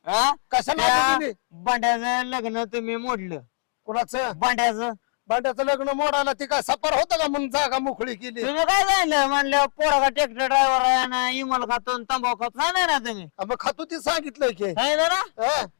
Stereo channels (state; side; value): silent; right; digital silence